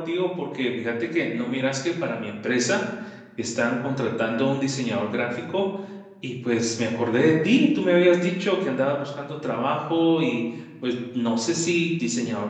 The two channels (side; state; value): both; identical; correlation 1.00